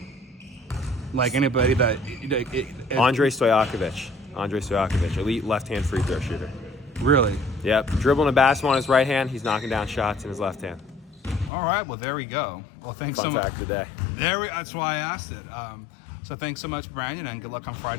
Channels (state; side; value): drops out; right; at 11.5 s